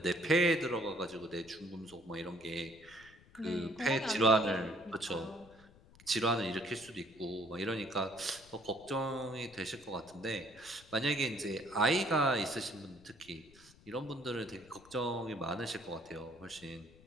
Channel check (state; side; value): noise; left; rumble, 24 dB below the sound